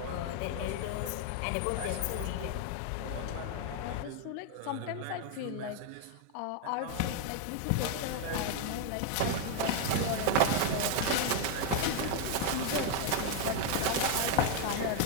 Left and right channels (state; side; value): different; both; correlation 0.00